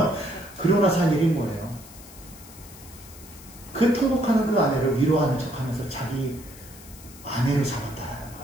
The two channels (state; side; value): noise; left; hiss, 19 dB below the sound